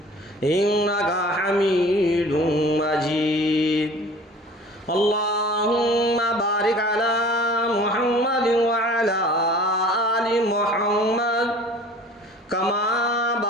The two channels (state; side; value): normal; both; correlation 0.45